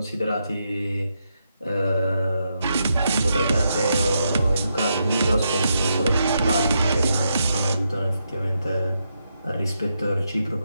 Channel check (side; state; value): both; inverted; correlation -0.82